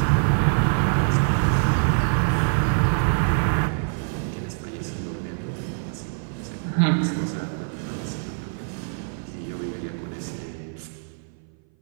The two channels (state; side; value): silent; left; 59 dB below the other